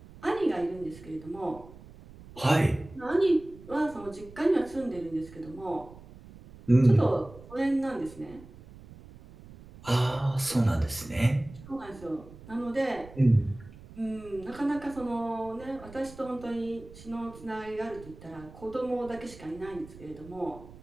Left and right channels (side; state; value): right; noise; rumble, 19 dB below the sound